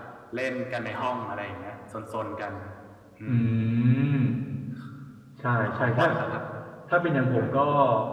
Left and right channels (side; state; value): both; identical; correlation 1.00